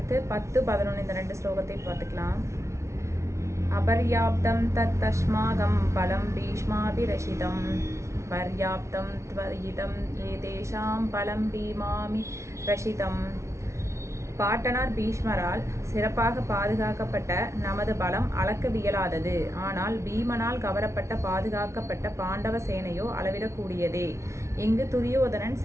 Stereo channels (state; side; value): late; left; 0.14 ms